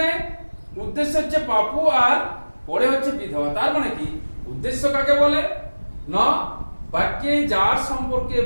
উদ্দেশ্য হচ্ছে পাপু আর পরে হচ্ছে বিধবা। তার মানে কি, উদ্দেশ্য কাকে বলে না, বাক্যে যার সম্পর্কে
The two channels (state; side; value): inverted; both; correlation -1.00